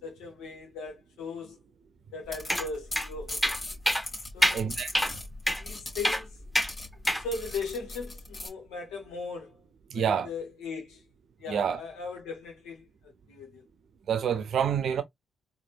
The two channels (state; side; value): normal; both; correlation 0.78